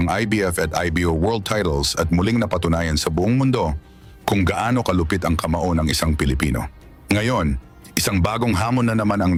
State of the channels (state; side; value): identical; both; correlation 1.00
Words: IBF at IBO World Titles at muling napatunayan sa buong mundo kung gaano kalupit ang kamao ng isang Pilipino. Ngayon, isang bagong hamon na naman ang